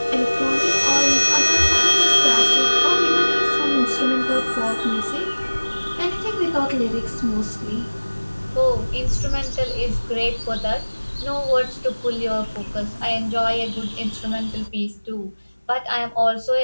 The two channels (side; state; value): both; inverted; correlation -1.00